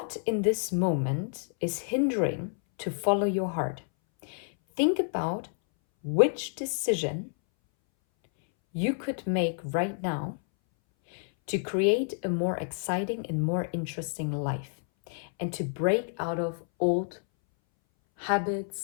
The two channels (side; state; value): right; silent; 59 dB below the other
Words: in this moment is hindering to follow your heart? Think about which decision you could make right now to create a more exciting and more interesting life, and to break out of old